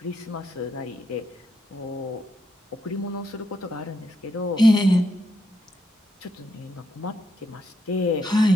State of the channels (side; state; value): both; normal; correlation 0.80